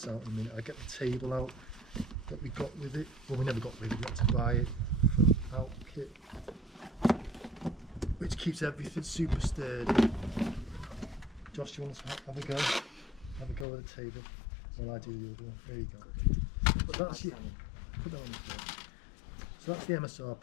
out in a minute. I get the table out that we got with it. Well, we never got with it, we had to buy it from Outkit, which keeps everything super sturdy. Josh, do you want to have a go? Have a go at the table while I do the other one. There you go. But that's it. Put that on the floor. So that's the MSR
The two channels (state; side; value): drops out; right; at 13.7 s